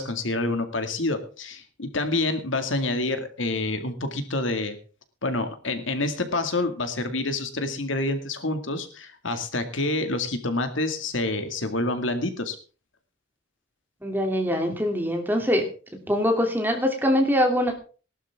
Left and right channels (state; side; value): normal; both; correlation 0.39